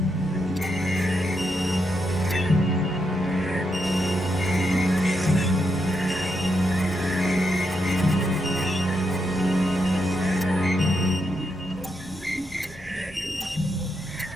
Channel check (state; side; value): normal; both; correlation 0.81